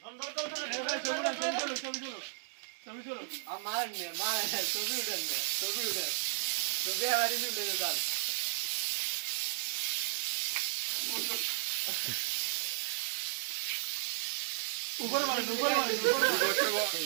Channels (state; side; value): silent; left; digital silence